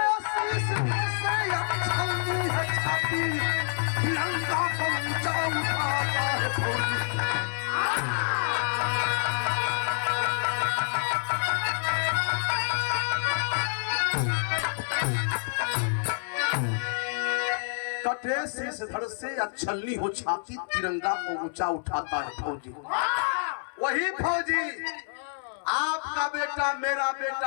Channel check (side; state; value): right; silent; 59 dB below the other